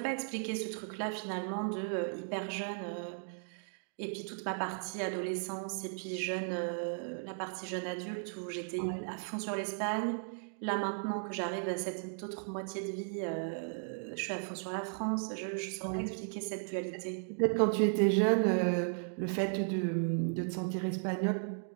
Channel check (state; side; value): silent; left; digital silence